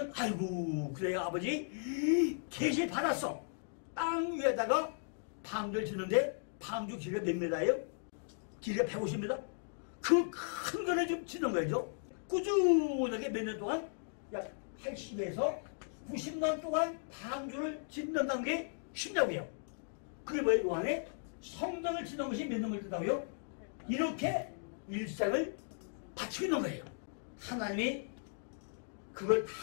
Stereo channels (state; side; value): silent; right; digital silence